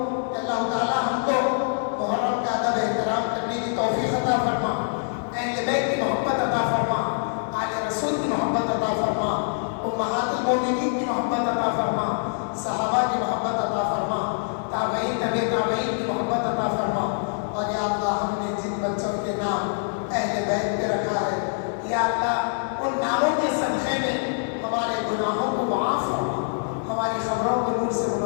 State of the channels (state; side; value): silent; right; digital silence